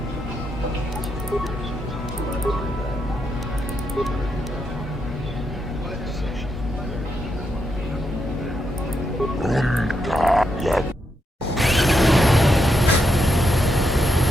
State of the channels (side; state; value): both; normal; correlation 0.81